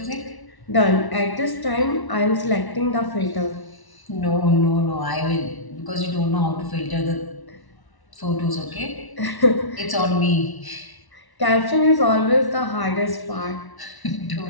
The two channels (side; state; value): right; late; 1.1 ms